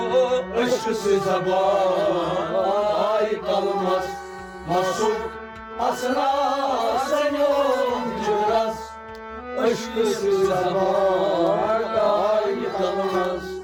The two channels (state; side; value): identical; both; correlation 1.00